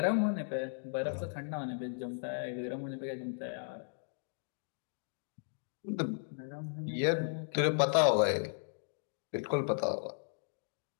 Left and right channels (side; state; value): right; silent; digital silence